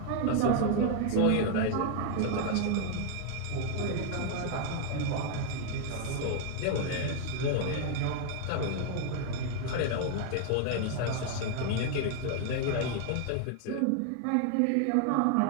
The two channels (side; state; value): both; different; correlation 0.00